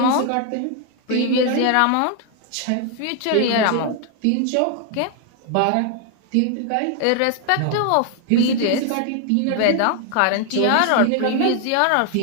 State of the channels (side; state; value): both; different; correlation 0.00